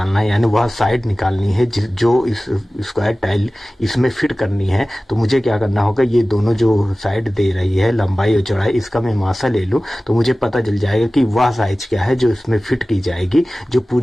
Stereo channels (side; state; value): both; normal; correlation 0.97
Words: है, यानी वह साइड निकालनी है जो इस स्क्वायर टाइल इसमें फिट करनी है, तो मुझे क्या करना होगा, ये दोनों जो साइड दे रही है लंबाई और चौड़ाई, इसका मैं मासा ले लूँ तो मुझे पता चल जाएगा कि वह साइज क्या है जो इसमें फिट की जाएगी, जो